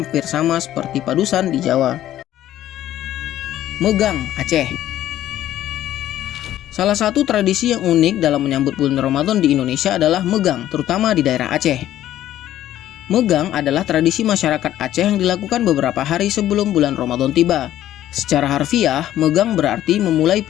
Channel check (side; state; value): right; quieter; 12.8 dB